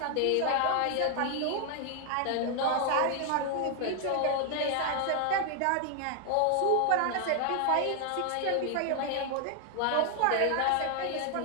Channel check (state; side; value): different; both; correlation 0.00